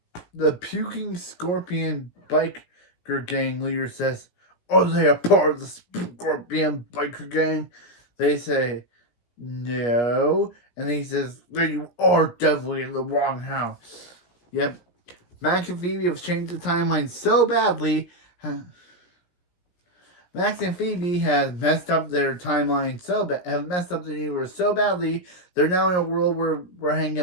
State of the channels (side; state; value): right; late; 17 ms